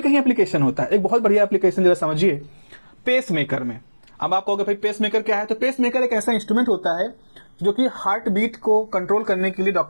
कहीं एप्लीकेशन होता है। एक बहुत बढ़िया एप्लीकेशन जरा समझिए, पेस मेकर में। अब आप कहोगे भाई पेस मेकर क्या है, तो पेस मेकर एक ऐसा इंस्ट्रूमेंट होता है जो कि हार्ट बीट को कंट्रोल करने के लिए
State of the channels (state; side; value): inverted; both; correlation -1.00